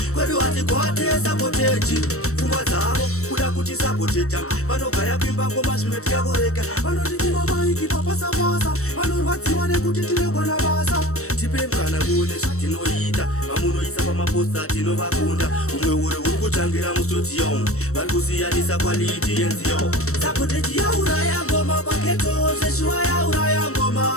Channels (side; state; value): right; late; 0.64 ms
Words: kwedu hati kwate sapotechi. Pfungwa dzavo kuda kuti sapoteta, vanogaya kwimba ngoma zvimwe tikakoreka. Vanotitima maiki papasa-pasa, vanorwadziwa nekuti tinogona basa. Tipe mukana muone zvatinoita, vamunoisa pamaposta tinovakunda. Umwe uri kutangira mustudio, vari kusiyanisa quality yenziyo. Sapotechi ya uraya ngoma paketo, seshua ya uraya ngoma.